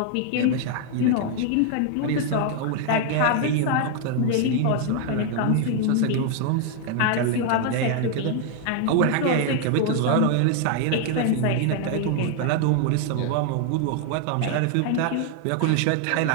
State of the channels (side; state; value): both; different; correlation 0.00